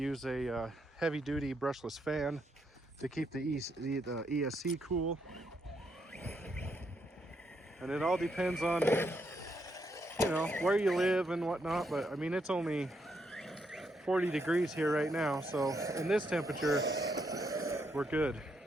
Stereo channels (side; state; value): both; normal; correlation 0.78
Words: a heavy-duty brushless fan to keep the ESC cool. And it all depends on, you know, where you live and whatnot. But I mean, it's only 40 degrees here right now. So in this temperature, we're good.